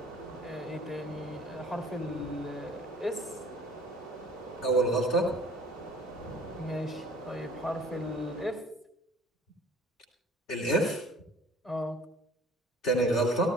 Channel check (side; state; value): both; normal; correlation 0.50